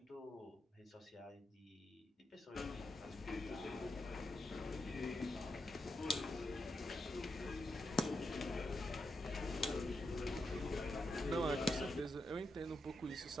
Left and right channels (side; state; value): both; normal; correlation 0.85